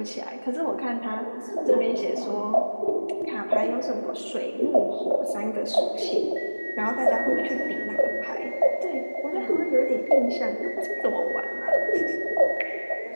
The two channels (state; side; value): inverted; both; correlation -1.00